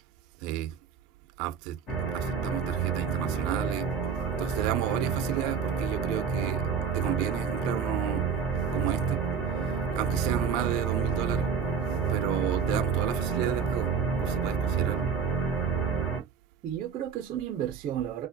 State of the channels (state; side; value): quieter; left; 6.5 dB